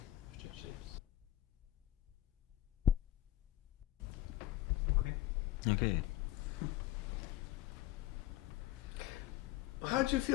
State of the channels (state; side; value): quieter; right; 14.6 dB